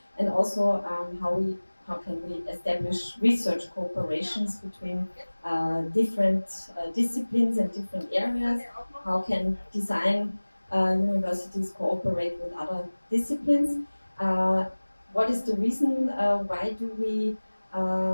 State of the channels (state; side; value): inverted; both; correlation -1.00